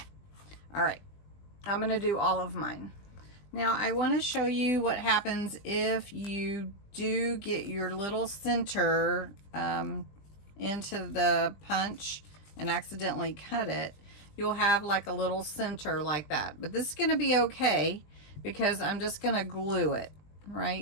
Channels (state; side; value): late; right; 20 ms